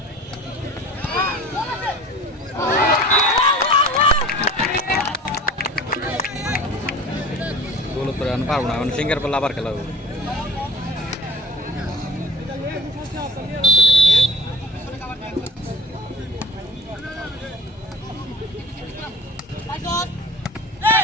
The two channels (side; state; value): both; normal; correlation 0.41